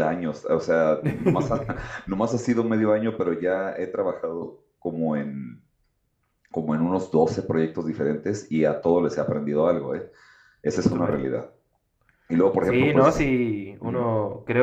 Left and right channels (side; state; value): both; identical; correlation 1.00